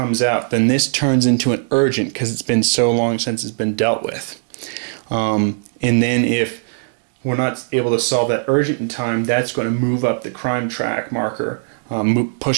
out. Then this turns into an urgent because it's been so long since it's been dealt with. And then if we're not able to solve that urgent in time, that's going to move up the crime track marker,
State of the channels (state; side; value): silent; left; digital silence